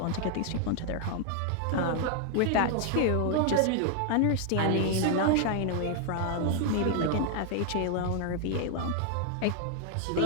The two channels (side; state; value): both; different; correlation 0.00